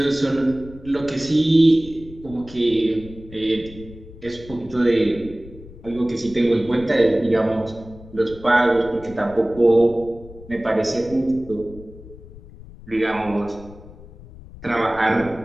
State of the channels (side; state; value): left; noise; rumble, 18 dB below the sound